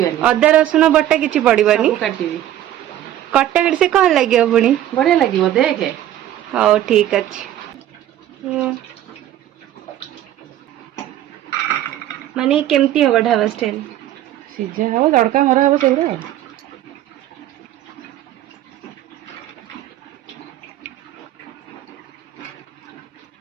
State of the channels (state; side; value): quieter; left; 12.6 dB